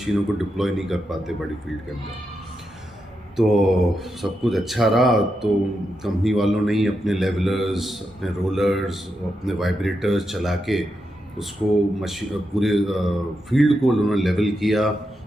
को डिप्लॉय नहीं कर पाते बड़ी फील्ड के अंदर। तो सब कुछ अच्छा रहा। तो कंपनी वालों ने ही अपने लेवलर्स, अपने रोलर्स, अपने वाइब्रेटर्स चला के उसको पूरे फील्ड को उन्होंने लेवल किया,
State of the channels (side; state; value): both; normal; correlation 0.85